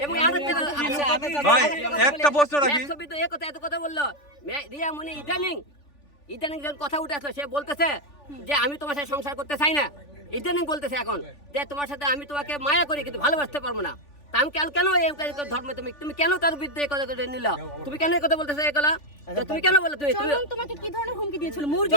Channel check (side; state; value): right; late; 3.5 ms